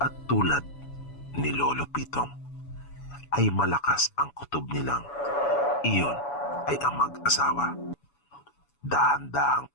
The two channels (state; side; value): late; right; 7.1 ms